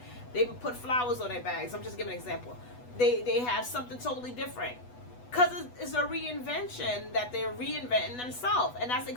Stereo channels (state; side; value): late; right; 8.1 ms